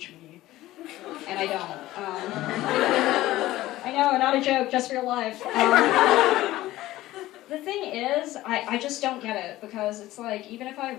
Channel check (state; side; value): quieter; right; 16.2 dB